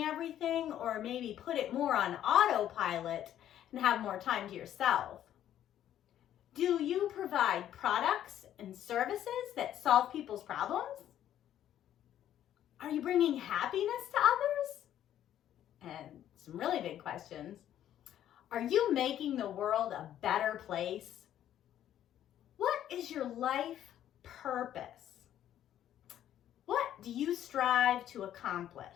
everything, or maybe put it more on autopilot and have more time to yourself? Do you provide products and services that solve people's problems? Are you bringing happiness to others? And some really big questions. Are you making the world a better place? What is your life purpose? What do you strive to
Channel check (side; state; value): right; quieter; 11.3 dB